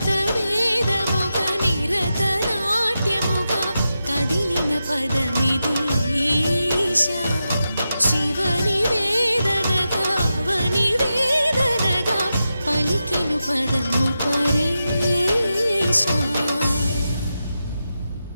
వేదముగ నిరత నాట్యముగ కదిలిన పదమిది ఈశా శివని వేదనగా వని వేదనగా పలికెను పదము పరేశా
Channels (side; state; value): both; inverted; correlation -0.89